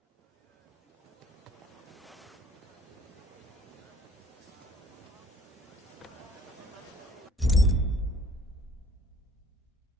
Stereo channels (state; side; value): normal; both; correlation 0.55